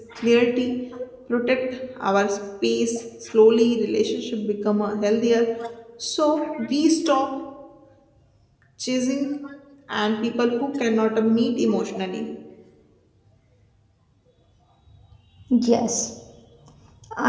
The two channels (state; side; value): identical; both; correlation 1.00